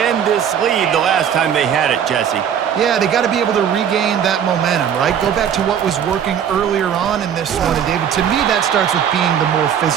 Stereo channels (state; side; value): quieter; left; 8.6 dB